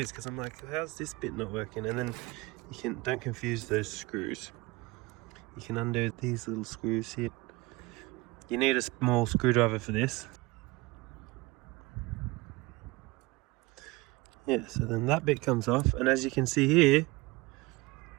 because I'm like, how's this bit not working? And then don't confuse those screws. You can undo these little screws here. You need a small screwdriver for this. Yeah, so then that bit comes off, and as you can see here,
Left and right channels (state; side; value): quieter; left; 21.7 dB